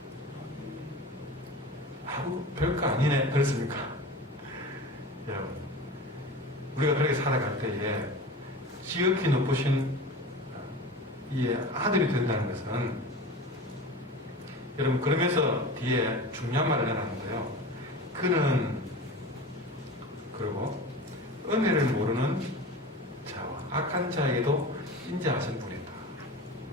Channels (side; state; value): both; normal; correlation 0.33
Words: 아우, 별거 아니네. 그렇습니까? 여러분, 우리가 그렇게 살아갈 때에 지극히 높으신 이의 아들이 된다는 것은, 여러분, 그러면서 뒤에 중요한 말을 해놨는데요. 그는, 그리고 은혜를 모르는 자와 악한 자에게도 인자하신 분이다.